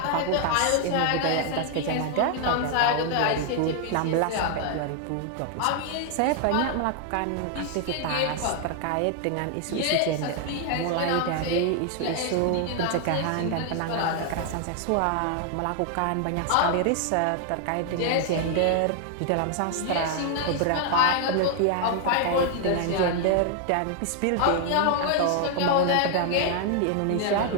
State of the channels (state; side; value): different; both; correlation 0.00